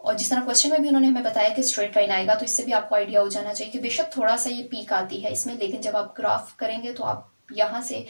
जिस तरह क्वेश्चन में भी उन्होंने हमें बताया कि स्ट्रेट लाइन आएगा, तो इससे भी आपको आइडिया हो जाना चाहिए कि बेशक थोड़ा सा ये पीक आती है इसमें, लेकिन जब आप ग्राफ करेंगे तो आप यहाँ से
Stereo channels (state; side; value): inverted; both; correlation -1.00